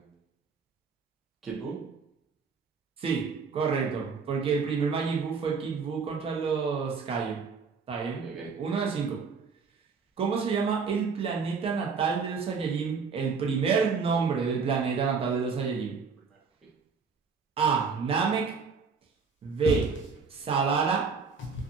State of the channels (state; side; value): quieter; left; 5.3 dB